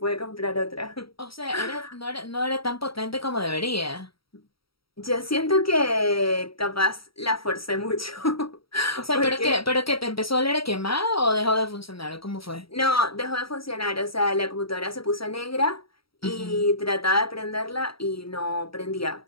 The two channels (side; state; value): right; late; 0.75 ms